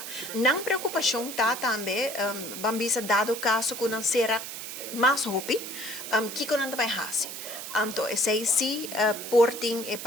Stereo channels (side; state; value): right; noise; hiss, 8 dB below the sound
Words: não preocupação tá também bambisa dado caso que não será mais hopi que não vai hasi. Então, esse sim, porting e